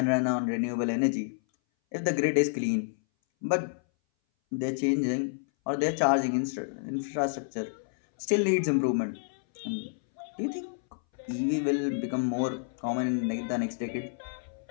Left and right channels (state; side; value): silent; right; 58 dB below the other